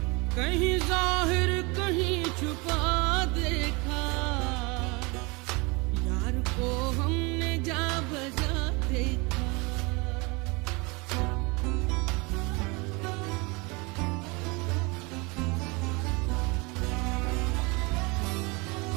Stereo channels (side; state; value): left; quieter; 27.5 dB